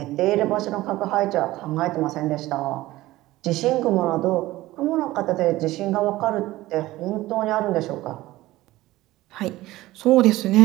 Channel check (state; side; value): quieter; left; 17.3 dB